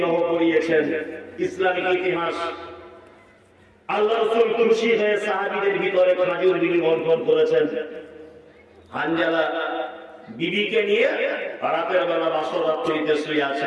করিয়েছেন। ইসলামিক ইতিহাস আল্লাহ রাসূল খুশি হয়ে সাহাবীদের ভিতরে খেজুর বিলি করেছেন। হানজালা বিবিকে নিয়ে রাতের বেলা বাসর রাত্রিতে শুয়ে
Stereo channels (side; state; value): both; identical; correlation 1.00